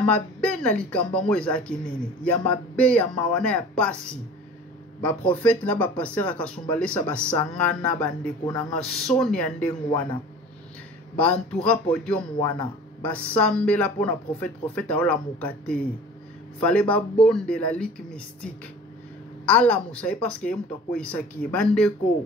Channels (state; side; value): normal; both; correlation 0.42